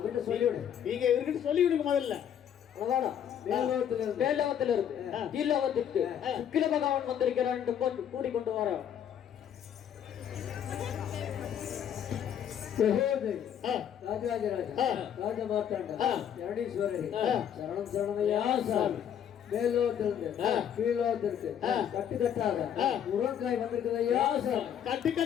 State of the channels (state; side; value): quieter; right; 9.2 dB